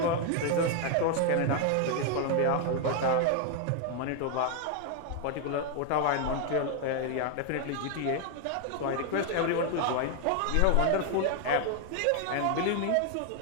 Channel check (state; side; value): different; both; correlation 0.00